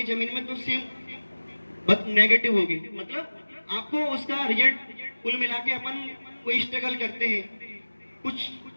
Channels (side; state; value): both; inverted; correlation -1.00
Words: जमीन में तो सेम नेगेटिव होगी। मतलब आपको उसका रिजल्ट कुल मिला के अपन कोई स्ट्रगल करते हैं, कुछ